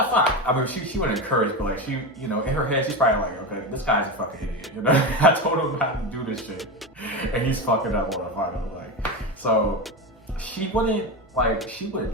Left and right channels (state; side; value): normal; both; correlation 0.19